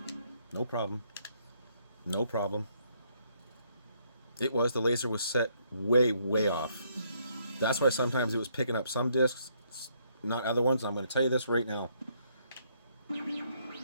No problem. No problem. It was. The laser was set way, way off. That's why sometimes it was picking up some discs, not other ones. I'm going to tell you this right now.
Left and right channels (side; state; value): both; inverted; correlation -0.70